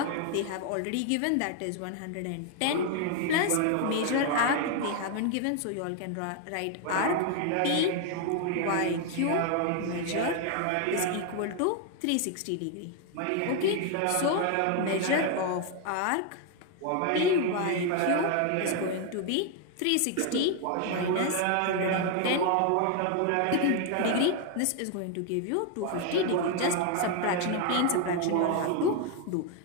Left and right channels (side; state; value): both; different; correlation 0.01